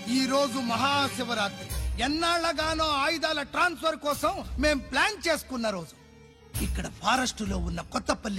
ఈ రోజు మహాశివరాత్రి. ఎన్నాళ్లగానో ఆయుధాల ట్రాన్స్ఫర్ కోసం మేం ప్లాన్ చేసుకున్న రోజు. ఇక్కడ ఫారెస్ట్ లో ఉన్న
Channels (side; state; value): both; identical; correlation 1.00